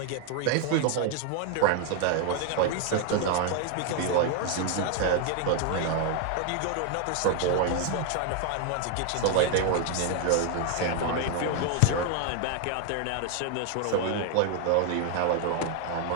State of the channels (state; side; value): different; both; correlation 0.01